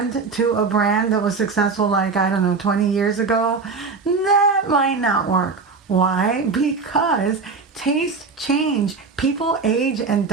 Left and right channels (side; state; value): left; quieter; 4.6 dB